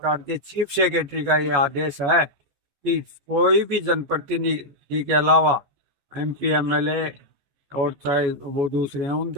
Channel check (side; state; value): left; late; 14 ms